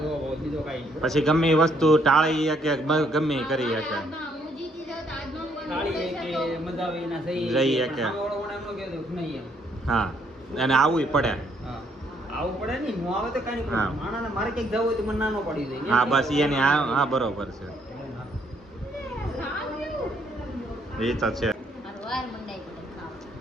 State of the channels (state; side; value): normal; both; correlation 0.69